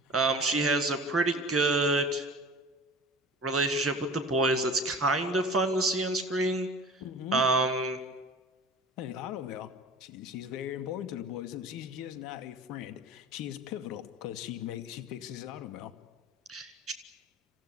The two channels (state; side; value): normal; both; correlation 0.39